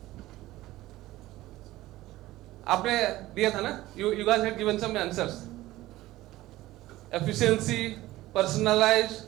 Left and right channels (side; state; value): left; quieter; 16.8 dB